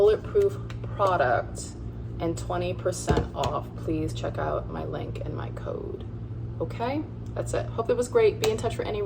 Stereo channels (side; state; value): both; identical; correlation 1.00